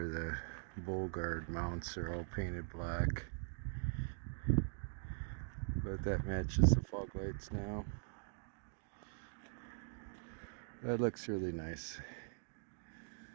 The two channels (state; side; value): silent; left; digital silence